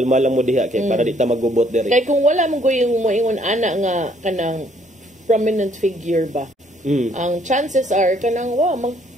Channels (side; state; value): both; normal; correlation 0.65